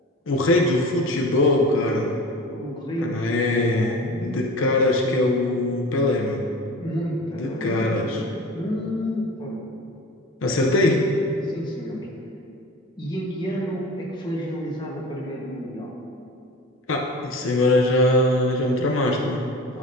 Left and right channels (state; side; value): normal; both; correlation 0.36